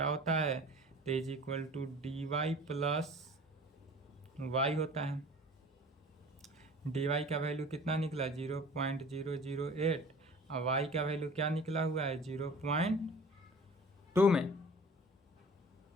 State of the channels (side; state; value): both; normal; correlation 0.44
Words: होता है? तो is equal to dy plus y होता है। dy का वैल्यू कितना निकला? 0.008 और y का वैल्यू क्या निकला हुआ है 0.2 में।